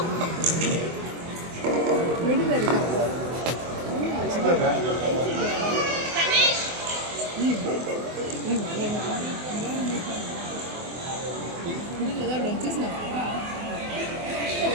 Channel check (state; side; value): late; left; 24 ms